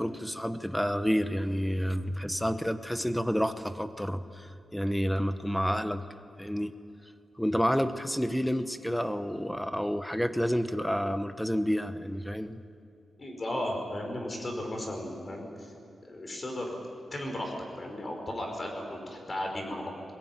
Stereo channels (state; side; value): normal; both; correlation 0.97